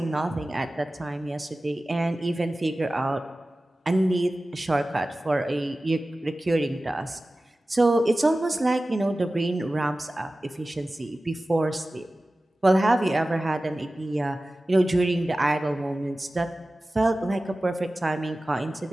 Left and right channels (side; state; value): both; normal; correlation 0.96